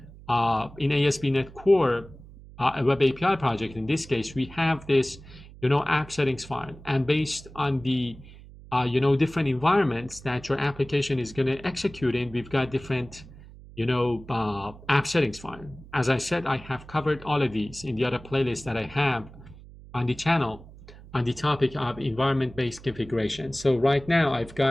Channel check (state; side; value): noise; right; hum, 19 dB below the sound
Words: in ASP.NET Core, a web API project, in this case, we have this app settings file, and based on the different environments that your application is going to execute in, we've got different app settings file. As I said, I have covered all of these in the other playlists that I have on the channel on the topic of environment-based configuration. So right now I've